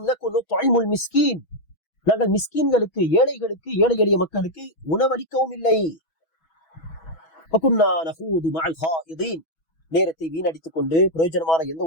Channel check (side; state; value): right; late; 6.2 ms